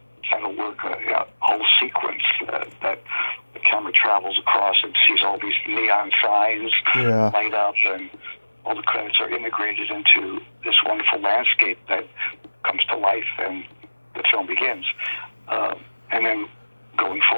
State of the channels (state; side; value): inverted; both; correlation -1.00